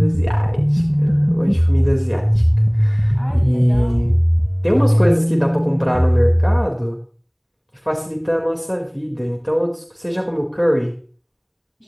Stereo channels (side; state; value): both; identical; correlation 1.00